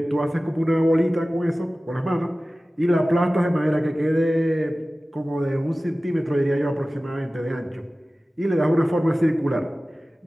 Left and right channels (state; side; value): normal; both; correlation 0.97